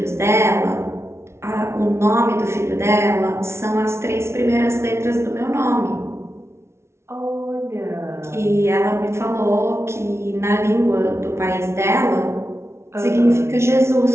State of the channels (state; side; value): late; left; 0.13 ms